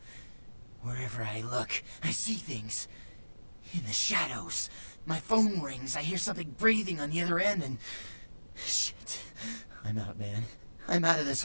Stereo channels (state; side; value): inverted; both; correlation -1.00